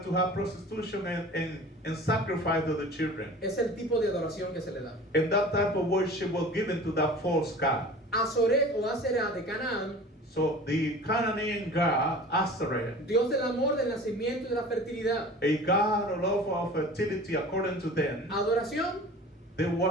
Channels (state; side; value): normal; both; correlation 0.41